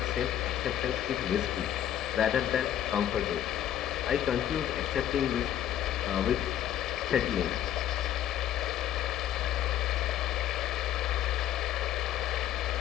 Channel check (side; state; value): right; quieter; 11.3 dB